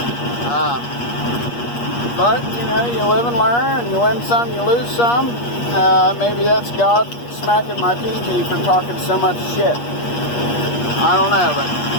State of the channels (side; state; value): right; late; 8.4 ms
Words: But, you know, you live and learn, and you win some, you lose some. Maybe that's God smacking my PG for talking so much shit. I don't know, but